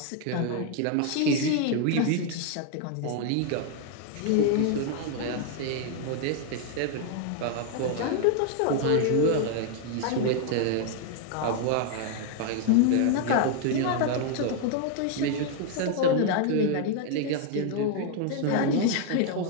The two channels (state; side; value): different; both; correlation 0.00